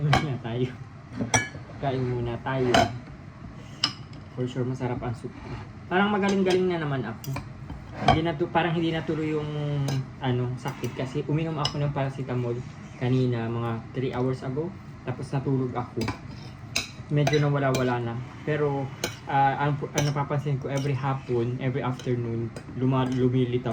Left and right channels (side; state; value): both; identical; correlation 1.00